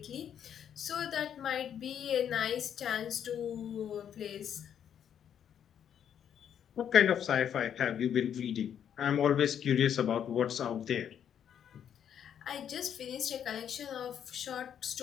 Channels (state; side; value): quieter; right; 9.0 dB